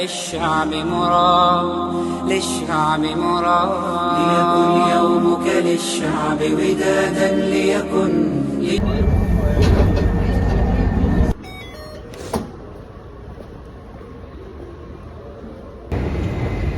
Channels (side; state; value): both; identical; correlation 1.00